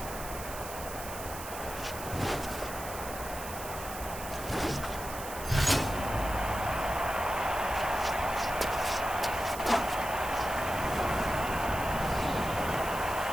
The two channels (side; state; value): right; noise; hiss, 11 dB below the sound